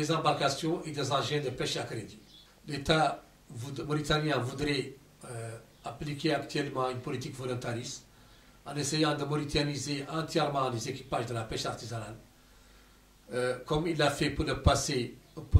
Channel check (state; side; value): identical; both; correlation 1.00